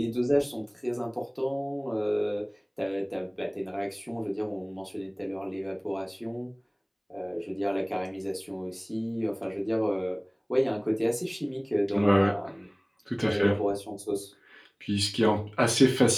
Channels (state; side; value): identical; both; correlation 1.00